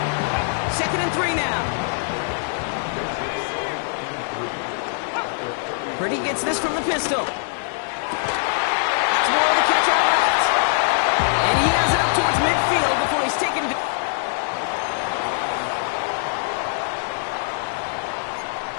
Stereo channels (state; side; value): silent; right; digital silence